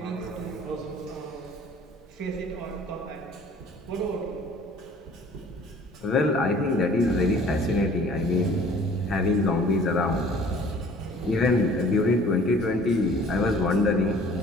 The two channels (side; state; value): both; normal; correlation 0.51